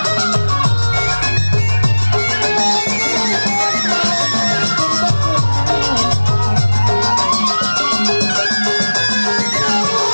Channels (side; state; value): both; inverted; correlation -1.00